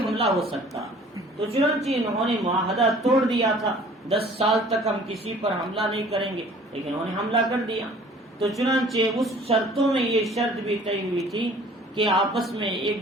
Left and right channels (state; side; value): normal; both; correlation 0.51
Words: ہو سکتا. تو چنانچہ انہوں نے معاہدہ توڑ دیا تھا، 10 سال تک ہم کسی پر حملہ نہیں کریں گے، لیکن انہوں نے حملہ کر دیا. تو چنانچہ اس شرطوں میں یہ شرط بھی طے ہوئی تھی کہ آپس میں